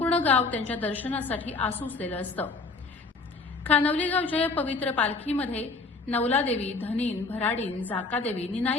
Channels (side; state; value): right; quieter; 3.9 dB